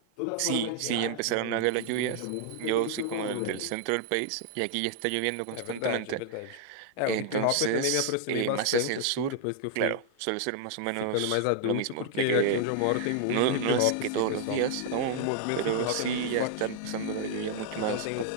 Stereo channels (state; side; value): different; both; correlation 0.00